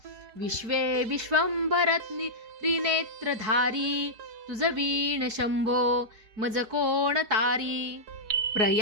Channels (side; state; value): left; late; 4.7 ms